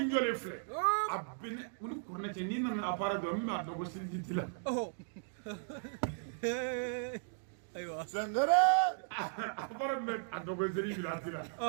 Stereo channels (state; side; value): silent; left; digital silence